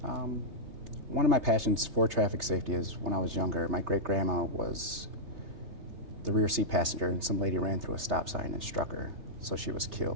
One of my passions for traffic safety is when I was younger, my great-grandma was the rear seat passenger, and some lady ran through a stop sign and struck her, so she was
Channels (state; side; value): late; left; 3.3 ms